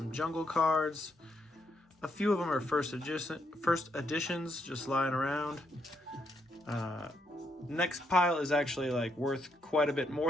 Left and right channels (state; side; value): normal; both; correlation 0.77